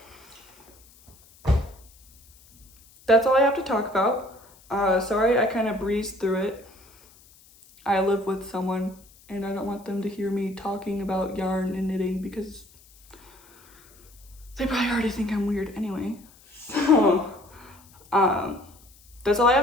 that's all I have to talk about. Sorry I kind of breezed through it. I live with someone and I don't want them to hear me talking about yarn and knitting because they probably already think I'm weird anyway. So that's all I have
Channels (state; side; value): noise; left; hiss, 27 dB below the sound